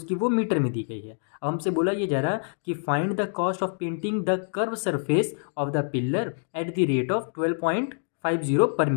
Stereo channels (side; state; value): right; silent; 61 dB below the other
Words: वो मीटर में दी गई है। अब हमसे बोला ये जा रहा कि find the cost of painting the curve surface of the pillar at the rate of 12.50 पर